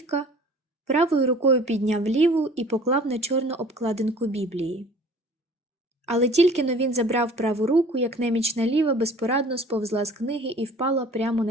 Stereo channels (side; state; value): both; normal; correlation 0.48